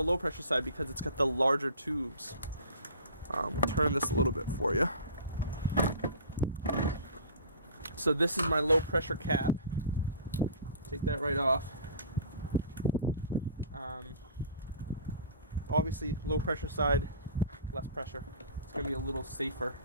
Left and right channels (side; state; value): both; inverted; correlation -0.42